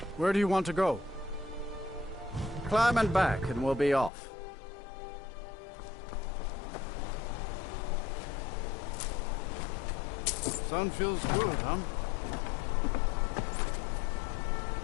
Where do you want to go? Climb and back, and we'll be off. Sun feels good, huh?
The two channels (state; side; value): drops out; right; at 4.1 s